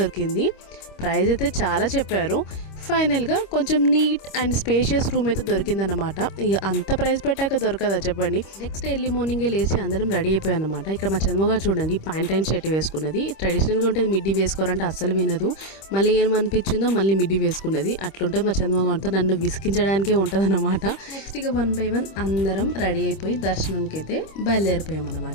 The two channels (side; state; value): right; late; 26 ms